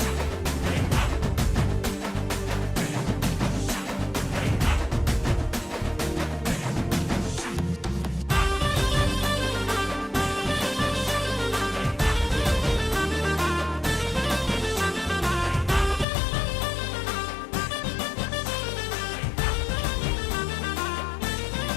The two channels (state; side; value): drops out; right; at 16.1 s